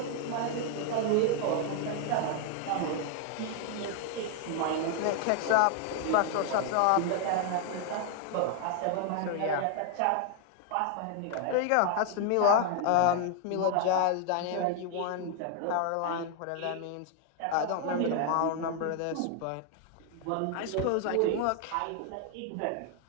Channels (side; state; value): both; different; correlation 0.00